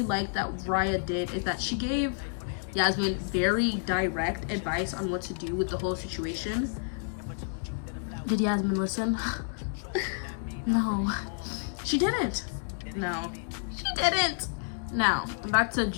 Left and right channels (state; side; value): silent; right; 58 dB below the other